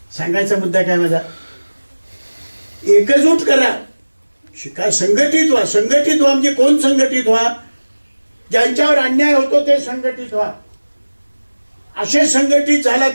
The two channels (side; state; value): both; inverted; correlation -1.00